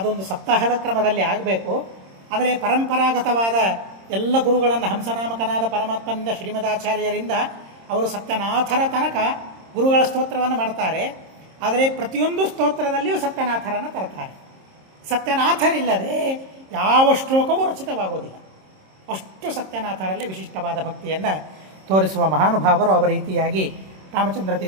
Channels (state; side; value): late; left; 26 ms